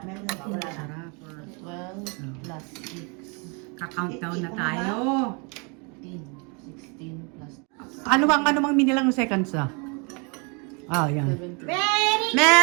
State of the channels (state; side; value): quieter; left; 33.1 dB